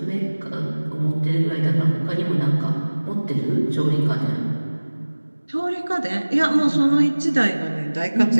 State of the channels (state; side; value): inverted; both; correlation -1.00